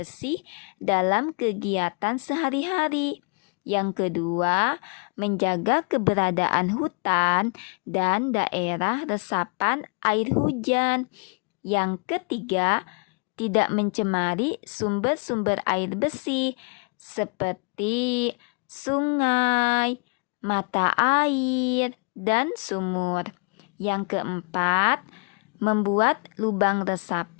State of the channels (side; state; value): right; quieter; 34.8 dB